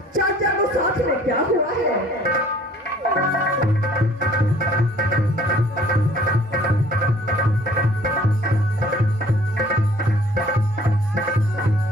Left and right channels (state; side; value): normal; both; correlation 0.55